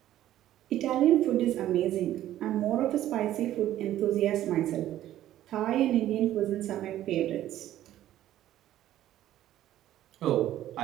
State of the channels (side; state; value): left; quieter; 13.0 dB